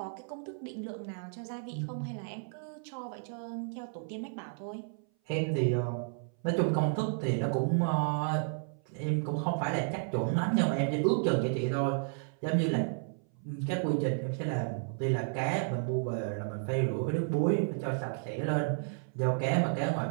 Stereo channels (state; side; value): silent; left; 56 dB below the other